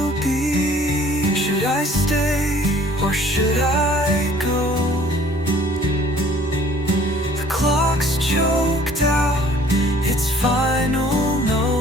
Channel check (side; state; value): both; normal; correlation 0.55